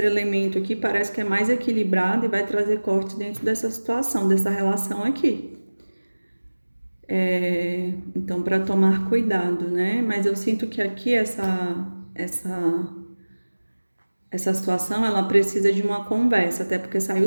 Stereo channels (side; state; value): both; inverted; correlation -1.00